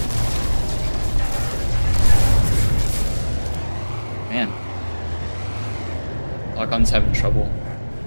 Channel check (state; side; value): inverted; both; correlation -1.00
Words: Man. Lock-on's having trouble.